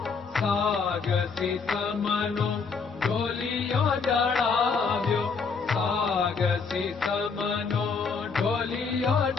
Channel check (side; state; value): right; quieter; 5.1 dB